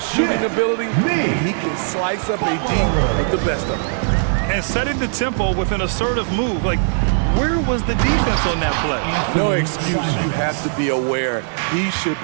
shooting ability. He can slice up a D with the best of them. And setting the tempo with an assertive move. Like, where was the defense on that play? No excuse. You have to be aware. He should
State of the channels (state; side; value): silent; left; 66 dB below the other